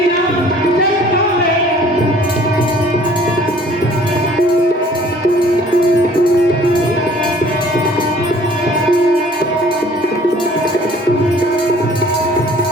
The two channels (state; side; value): normal; both; correlation 0.54